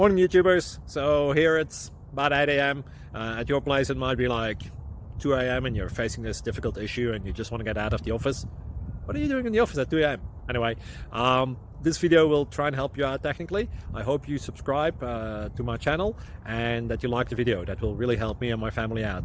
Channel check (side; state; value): both; identical; correlation 1.00